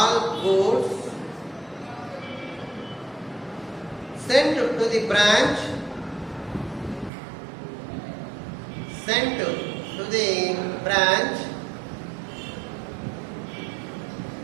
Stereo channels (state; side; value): drops out; left; at 7.1 s